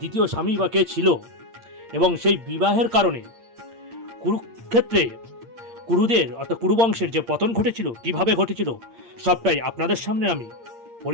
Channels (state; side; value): late; left; 8.7 ms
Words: স্বামী বা কে ছিল, এবং সেই বিবাহের কারণে কুরুক্ষেত্রে কুরুদের অর্থাৎ কুরুবংশের যে পতন ঘটেছিল, কিভাবে ঘটেছিল, সবটাই আপনাদের সামনে আমি